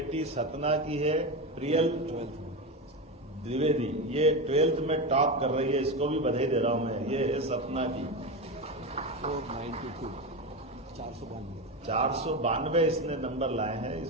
सतना की है, प्रियल द्विवेदी। ये 12th में टॉप कर रही है, इसको भी बधाई दे रहा हूं मैं। ये है सतना की 492 इसने नंबर लाए हैं,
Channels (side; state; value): both; normal; correlation 0.18